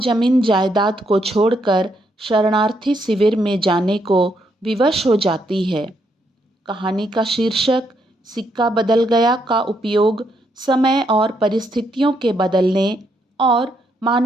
जायदाद को छोड़कर शरणार्थी शिविर में जाने को विवश हो जाती है। कहानी का शीर्षक सिक्का बदल गया का उपयोग समय और परिस्थितियों के बदलने और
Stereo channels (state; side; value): normal; both; correlation 0.76